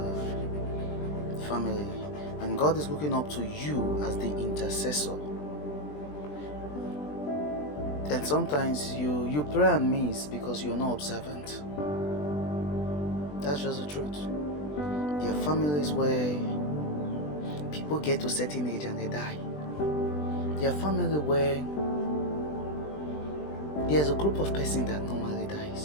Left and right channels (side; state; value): right; late; 20 ms